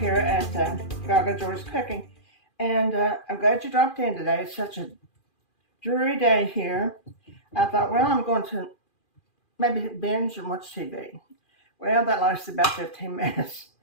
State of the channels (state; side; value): late; right; 2.4 ms